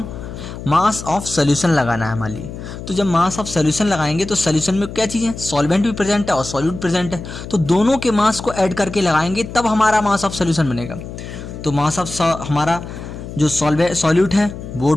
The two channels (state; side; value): noise; left; hum, 11 dB below the sound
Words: मास ऑफ सॉल्यूशन लगाना है मान लिए। तो जब मास ऑफ सॉल्यूशन लगाएंगे तो सॉल्यूशन में क्या चीज़ है, सॉल्वेंट भी प्रेजेंट है और सॉल्यूट प्रेजेंट है। तो दोनों के मास को ऐड करके लगाएंगे तब हमारा मास ऑफ सॉल्यूशन बनेगा। तो मास ऑफ हमारा जो सॉल्यूट है वो